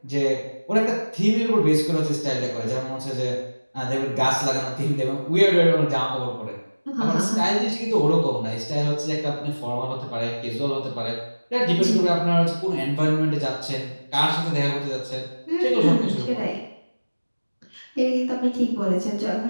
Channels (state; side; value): inverted; both; correlation -1.00